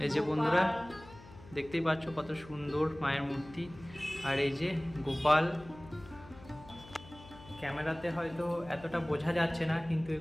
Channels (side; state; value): left; noise; hum, 19 dB below the sound